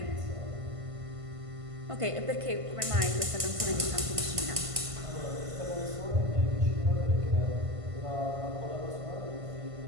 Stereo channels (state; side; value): late; left; 1.5 ms